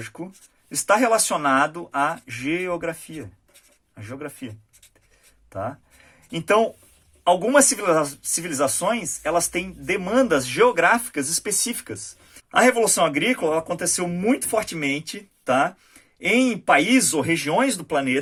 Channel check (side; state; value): both; identical; correlation 1.00